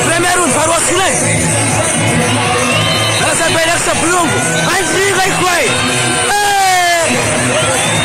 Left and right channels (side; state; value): both; identical; correlation 1.00